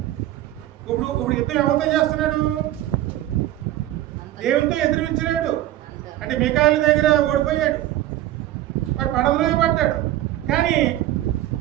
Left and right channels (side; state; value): left; quieter; 14.2 dB